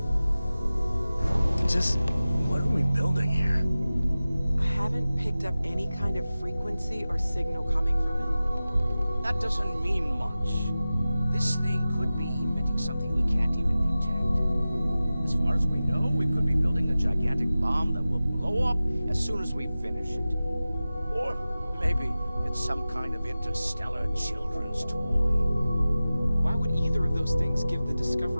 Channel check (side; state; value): both; inverted; correlation -0.96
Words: Just, what are we building here? I haven't picked up any kind of frequency or signal coming from it. That doesn't mean much. This thing could be emitting something we can't even detect. As far as we know, we could be building a gigantic bomb that will blow up as soon as we finish it. Or maybe it's some kind of interstellar children's toy. Why would either of those things give the